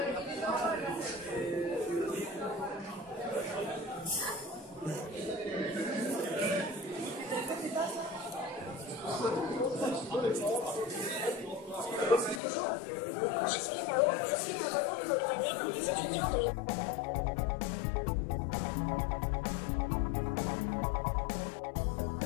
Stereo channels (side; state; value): right; drops out; at 12.4 s